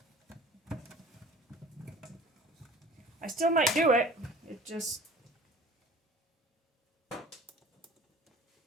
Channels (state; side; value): normal; both; correlation 0.45